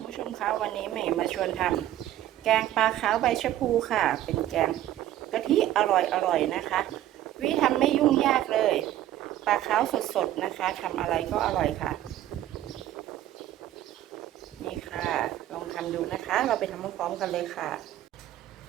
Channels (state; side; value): quieter; left; 13.1 dB